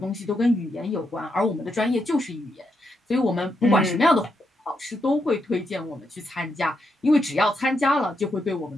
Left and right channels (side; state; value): both; normal; correlation 0.81